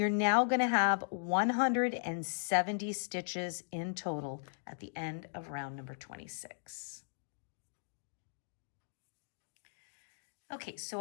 now going to have 170 stitches in total at the end of round number 26. Okay,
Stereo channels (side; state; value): right; silent; digital silence